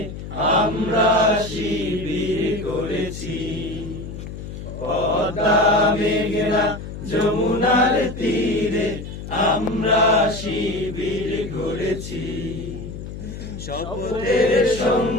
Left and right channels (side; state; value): left; noise; hum, 10 dB below the sound